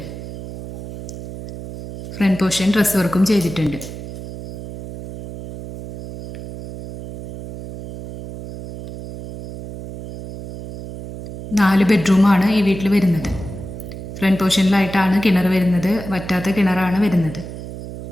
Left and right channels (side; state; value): right; noise; hum, 11 dB below the sound